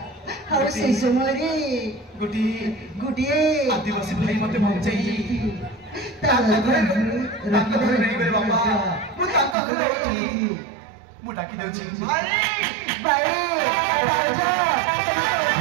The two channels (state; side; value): drops out; left; at 9.6 s